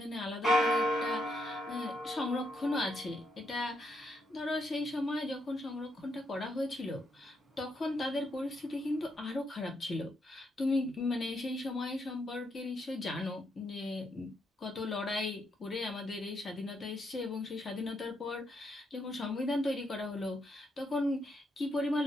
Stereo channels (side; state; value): both; normal; correlation 0.78